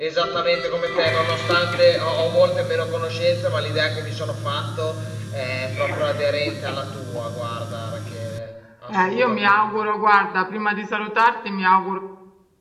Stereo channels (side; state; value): both; identical; correlation 1.00